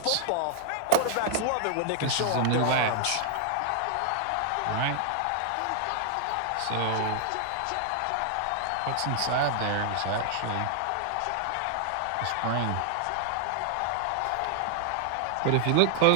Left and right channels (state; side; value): different; both; correlation 0.00